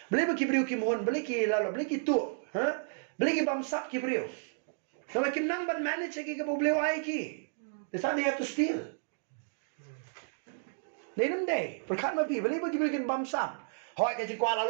Balik ibriyo ki mohon, balik ki lalo, balik ito. Ha? Balik bamsak ki ibriyo. So bakim nang ban manage kay ka problema ay ki. That's how they have to steal. They don't day. Perkat mapi balik ibriyo bamsak. Hoy ka jingkwala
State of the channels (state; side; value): silent; left; digital silence